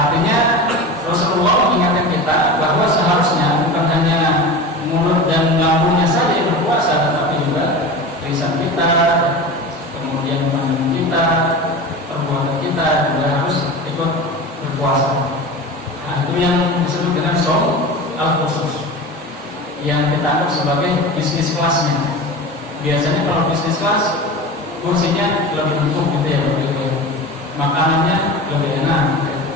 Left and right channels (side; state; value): both; normal; correlation 0.30